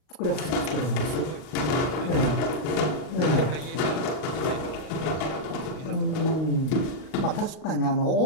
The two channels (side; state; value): right; late; 39 ms